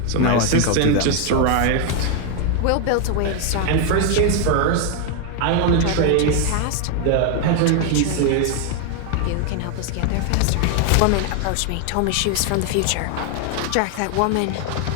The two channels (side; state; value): both; different; correlation 0.01